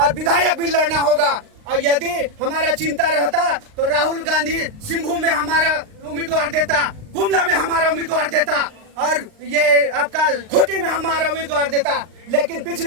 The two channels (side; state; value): left; late; 39 ms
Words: विधायक भी लड़ना होगा। और यदि हमारा चिंता रहता तो राहुल गांधी सिंभू में हमारा उम्मीदवार देता, गुमला में हमारा उम्मीदवार देता, और ये आपका खूंटी में हमारा उम्मीदवार देता। लेकिन